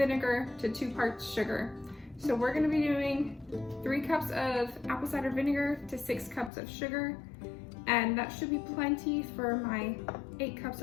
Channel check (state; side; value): drops out; right; at 6.5 s